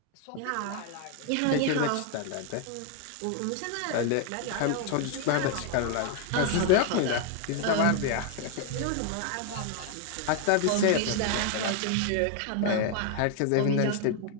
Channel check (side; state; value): both; different; correlation 0.00